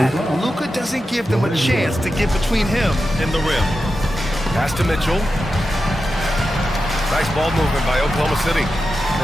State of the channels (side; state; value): both; normal; correlation 0.90